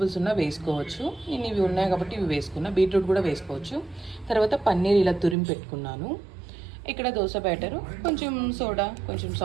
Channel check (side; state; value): left; drops out; at 5.4 s